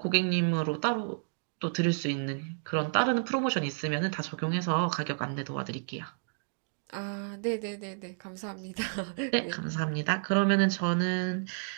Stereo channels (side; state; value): left; silent; digital silence